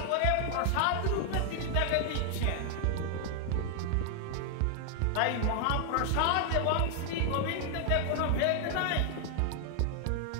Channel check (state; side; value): different; both; correlation 0.00